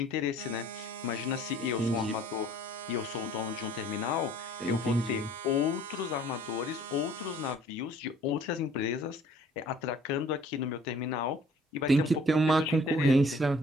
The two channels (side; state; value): both; normal; correlation 0.55